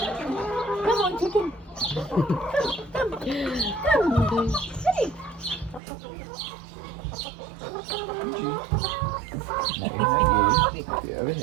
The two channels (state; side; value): drops out; left; at 5.8 s